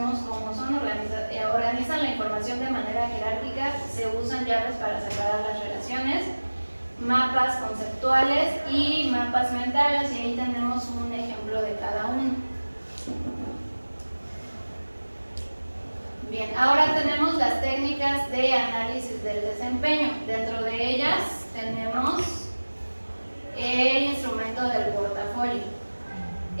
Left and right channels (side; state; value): both; inverted; correlation -1.00